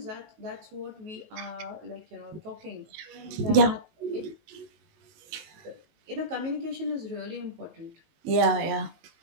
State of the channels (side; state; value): left; late; 19 ms